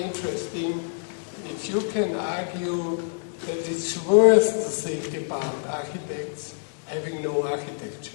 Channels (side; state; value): right; silent; digital silence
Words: interesting if you can argue that it's worth to think about architects having no